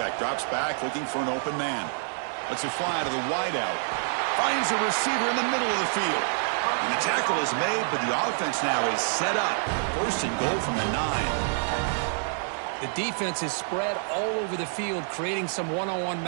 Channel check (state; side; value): silent; left; digital silence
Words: drops back looking for an open man. Lets it fly to the wideout. Finds a receiver in the middle of the field. And the tackle is made, but the offense now is set up. First and goal from the 9. The defense is spread all over the field, creating some one-on-one